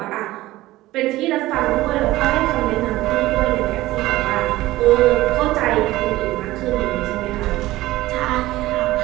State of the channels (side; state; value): left; quieter; 17.2 dB